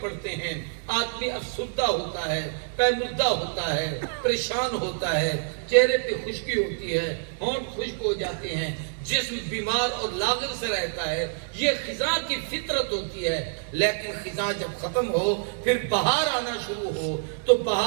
پڑتے ہیں۔ آدمی افسردہ ہوتا ہے، پیمردہ ہوتا ہے، پریشان ہوتا ہے، چہرے پہ خشکی ہوتی ہے، ہونٹ خشک ہو جاتے ہیں، جسم بیمار اور لاغر سے رہتا ہے۔ یہ خزاں کی فطرت ہوتی ہے۔ لیکن خزاں جب ختم ہو پھر بہار آنا شروع ہو تو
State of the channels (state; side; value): silent; left; 60 dB below the other